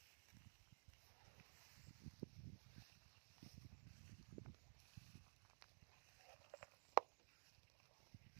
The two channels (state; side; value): silent; left; digital silence